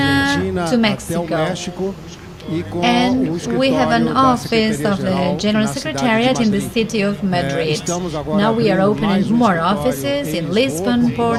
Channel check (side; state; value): both; identical; correlation 1.00